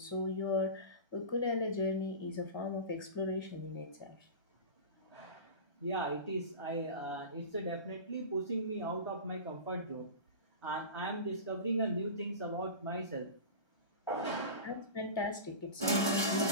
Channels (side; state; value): right; late; 1.3 ms